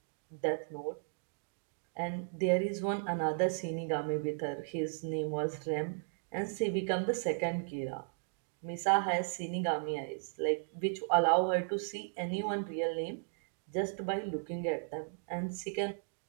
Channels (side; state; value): left; silent; digital silence